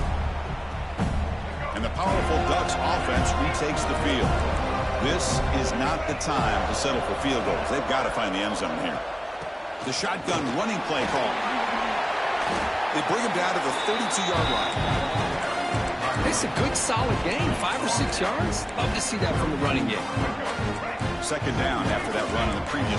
And the powerful Ducks offense retakes the field. This is not the time to settle for field goals. They've got to find the end zone here. The shotgun running play call. They bring him down to the 32-yard line. It's a good, solid game. 5 or 6 yards. Love to see that from the running game. Second down after that run in the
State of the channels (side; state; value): both; identical; correlation 1.00